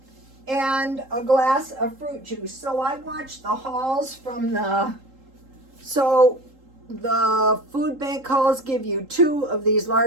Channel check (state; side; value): late; left; 3.8 ms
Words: And a glass of fruit juice. So I watched the hauls from the food bank hauls give you 2 of these